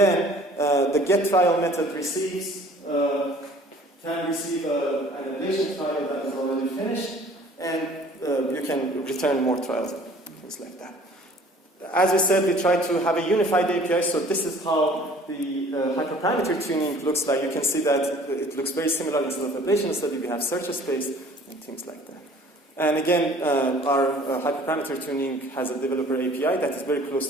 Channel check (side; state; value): both; normal; correlation 0.51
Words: the get trial method can receive an ablation trial that is already finished, and you can return more trials, things like that. As we said, we try to have a unified API, so this is how the hyperparameter tuning looks like. You can see that it looks very similar. Instead of Ablation Study, we have search space and things like that. And again, our hyperparameter tuning has a developer API that is very close